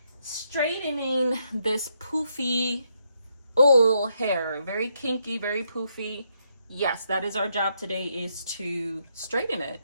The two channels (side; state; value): both; inverted; correlation -0.77